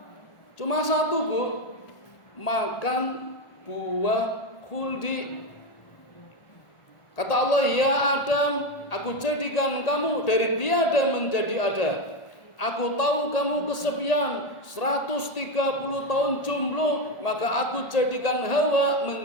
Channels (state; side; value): late; right; 1.8 ms